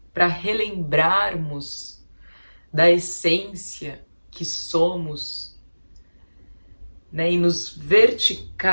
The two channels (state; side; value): inverted; both; correlation -1.00